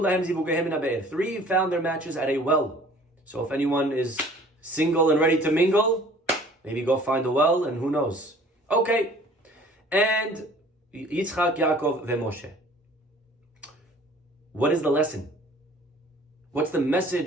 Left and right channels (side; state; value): both; normal; correlation 0.51